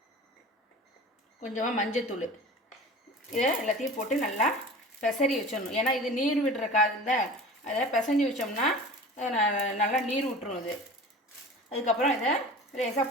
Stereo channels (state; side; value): normal; both; correlation 0.39